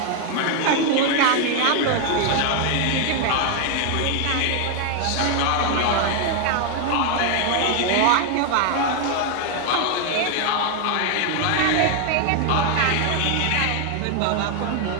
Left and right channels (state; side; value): different; both; correlation 0.01